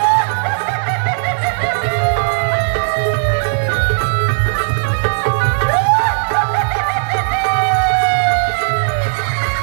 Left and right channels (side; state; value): left; silent; 65 dB below the other